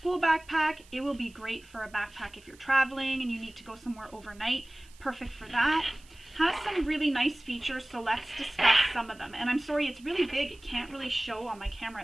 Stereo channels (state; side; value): noise; right; hiss, 26 dB below the sound